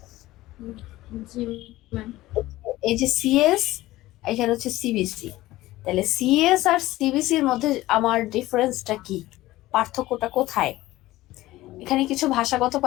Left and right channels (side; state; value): right; quieter; 17.1 dB